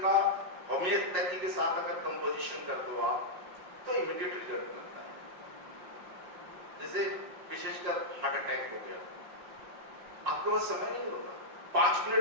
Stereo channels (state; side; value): late; left; 5.6 ms